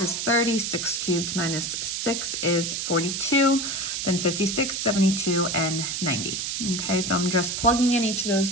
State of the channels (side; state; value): right; noise; hiss, 2 dB below the sound